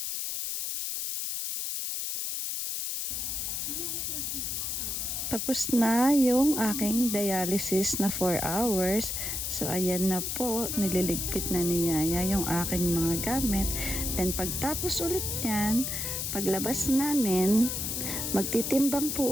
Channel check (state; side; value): noise; left; hiss, 2 dB below the sound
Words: Tapos na yung aking dialysis na 4 hours. So, ayan na po. Nililigpit na ni Yaya yung aking mga gamit. Then, pagtapos ulit yan, paglabas namin, magtitimbang